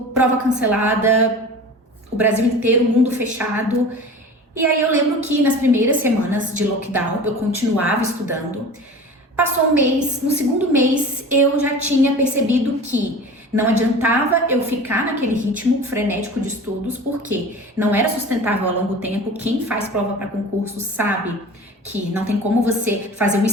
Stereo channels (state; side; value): normal; both; correlation 0.37